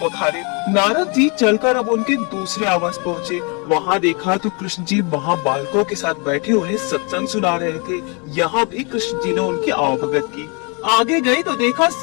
नारद जी चलकर अब उनके दूसरे आवास पहुँचे। वहाँ देखा तो कृष्ण जी वहाँ बालकों के साथ बैठे उन्हें सत्संग सुना रहे थे। यहाँ भी कृष्ण जी ने उनकी आवभगत की। आगे गए तो देखा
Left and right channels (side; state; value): right; quieter; 32.9 dB